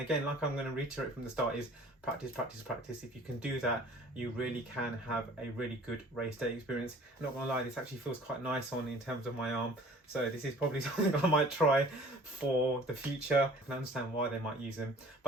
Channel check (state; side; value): normal; both; correlation 0.49